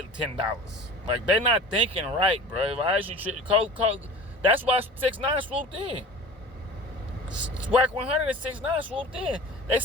$10. Like, they're not thinking right, bro. That's why 6ix9ine swooped in. Swag 100 and 6ix9ine swooped in. They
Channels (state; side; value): normal; both; correlation 0.40